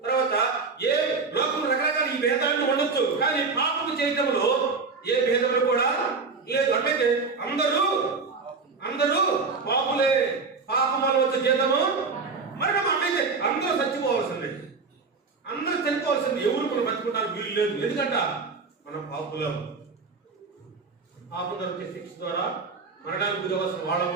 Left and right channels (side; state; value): left; quieter; 4.5 dB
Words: తర్వాత ఏ లోకం రకరకాల ఈ భేదాలను ఉండొచ్చు, కానీ పాపము చేయటంలో ఏ భేదములు కూడా లేదు. అంటే అందరూ పాపులే, పాపం వల్ల వచ్చే జీతము మరణం. అంటే అందరూ చచ్చిపోవాల్సిందే, అందరూ చనిపోవాల్సింది. ఎవరు మనం బతుకుంటారు వీలు లేదు. ఎందుకంటే మనం పాపులం. పాపం వచ్చే శిక్ష ద్వారా మరణానికి గురవలసిన